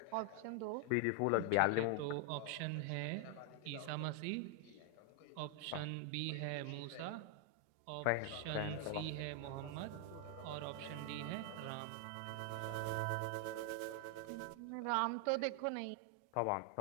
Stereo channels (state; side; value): different; both; correlation 0.00